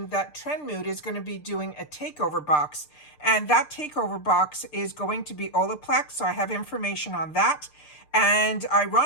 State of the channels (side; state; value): right; late; 6.7 ms